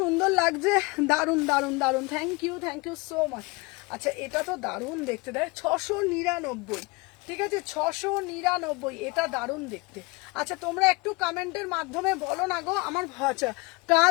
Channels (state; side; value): quieter; right; 25.6 dB